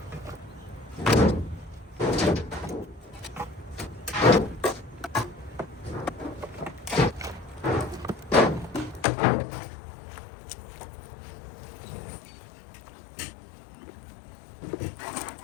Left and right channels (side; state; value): right; drops out; at 9.1 s